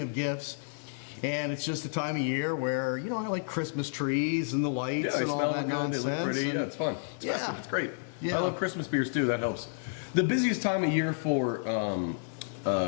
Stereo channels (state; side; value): silent; right; digital silence